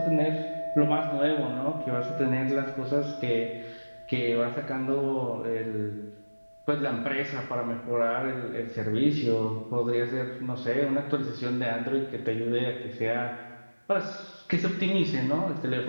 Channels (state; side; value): inverted; both; correlation -1.00